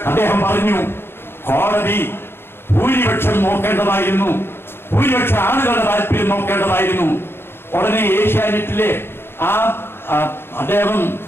അദ്ദേഹം പറഞ്ഞു, കോടതി ഭൂരിപക്ഷം നോക്കേണ്ടതായിരുന്നു, ഭൂരിപക്ഷ ആളുകളുടെ താല്പര്യം നോക്കേണ്ടതായിരുന്നു. ഉടനെ ഏഷ്യാനെറ്റിലെ ആ അദ്ദേഹം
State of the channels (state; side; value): late; right; 0.11 ms